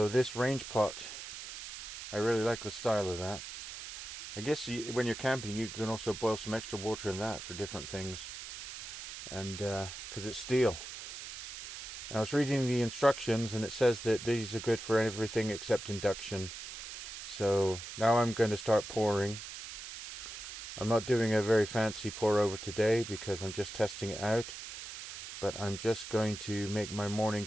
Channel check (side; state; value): right; noise; hiss, 9 dB below the sound